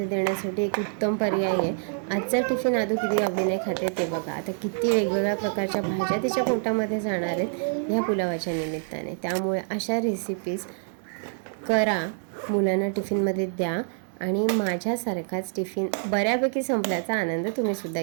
देण्यासाठी एक उत्तम पर्याय आहे। आजचा टिफिन आदू किती आवडीने खाते ते बघा। आता किती वेगवेगळ्या प्रकारच्या भाज्या तिच्या पोटामध्ये जाणार आहेत ह्या पुलावाच्या निमित्ताने। त्यामुळे अशा रेसिपीज करा, मुलांना टिफिनमध्ये द्या आणि माझ्यासारखाच टिफिन बऱ्यापैकी संपल्याचा आनंद तुम्हीसुद्धा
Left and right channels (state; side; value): silent; left; 61 dB below the other